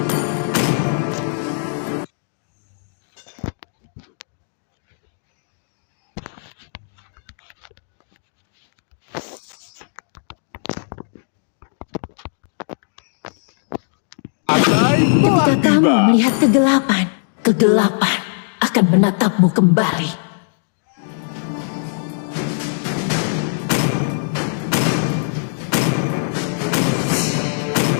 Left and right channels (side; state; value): right; silent; digital silence